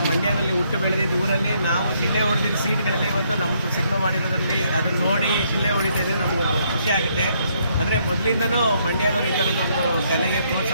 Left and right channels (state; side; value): inverted; both; correlation -0.71